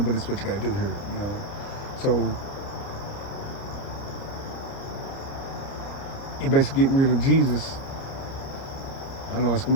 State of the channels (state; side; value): late; right; 29 ms